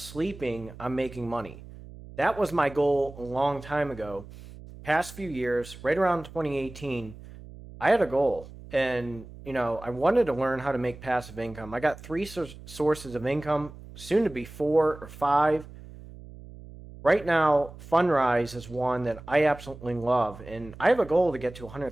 I'm making money. That was my goal a long time ago. Past few years, right around 2018, I had a goal. And, I wanted to learn how to make passive income. I got three sources of income, soon to be 4 or 5. Right now, Fundrise is one that I absolutely love. And I have a goal to get to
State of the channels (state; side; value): noise; right; hum, 16 dB below the sound